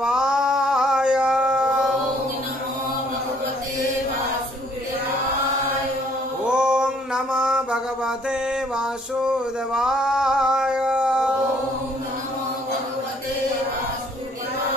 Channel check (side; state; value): both; normal; correlation 0.62